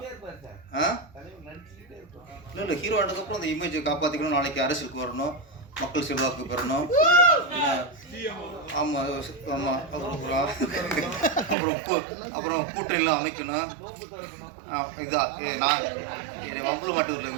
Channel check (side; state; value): left; drops out; at 11.6 s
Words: இல்லை ஹீரோ ஆனதுக்கப்புறம் அந்த இமேஜை காப்பாற்றிக்கணும். நாளைக்கு அரசியலுக்கு வரணும், மக்கள் செல்வாக்கு பெறணும். ஆமாம் ஆமாம். அப்புறம் கூட்டணிலாம் அமைக்கணும். இதுதான் நான் என்னை வம்புல மாட்டூரில்